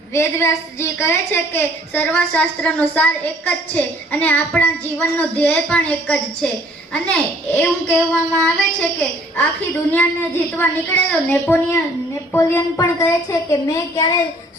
વેદવ્યાસજી કહે છે કે સર્વશાસ્ત્રનો સાર એક જ છે અને આપણા જીવનનો ધ્યેય પણ એક જ છે. અને એવું કહેવામાં આવે છે કે આખી દુનિયાને જીતવા નીકળેલો નેપોલિયન પણ કહે છે કે મેં ક્યારેય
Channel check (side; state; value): both; normal; correlation 0.58